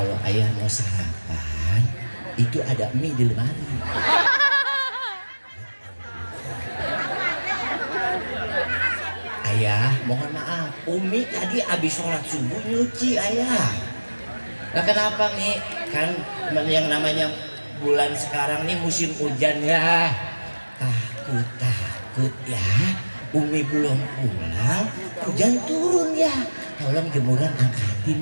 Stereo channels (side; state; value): both; inverted; correlation -1.00